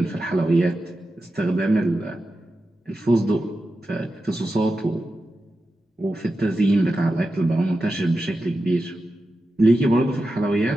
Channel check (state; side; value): normal; both; correlation 0.91